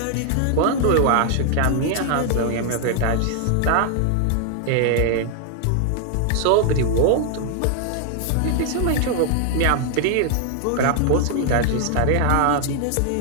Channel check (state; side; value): different; both; correlation 0.00